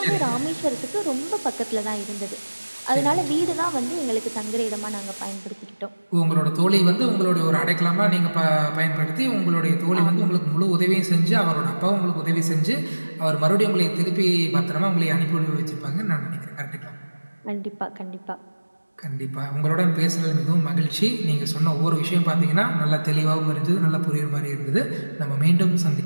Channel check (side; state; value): both; inverted; correlation -1.00